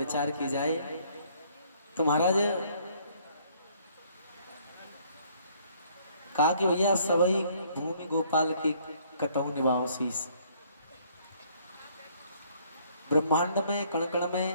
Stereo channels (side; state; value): both; inverted; correlation -0.63